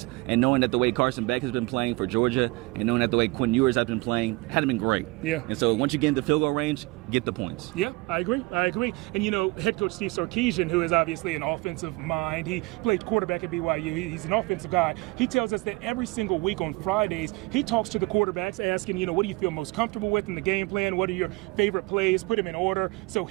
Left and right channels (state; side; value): quieter; left; 24.0 dB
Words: and knowing that the way Carson Beck has been playing for Georgia and knowing that the way Quinn Ewers has been playing hadn't been great. Yeah. And so once you get into field goal range, get the points. Yeah, I agree. And, head coach Steve Sarkisian, who is obviously an offensive mind, he played quarterback at BYU. He's an offensive guy. He tells us that every single week on Fridays, he talks to the quarterbacks asking, what do you feel most comfortable with in the game plan? What are your favorite plays? Put them in order. So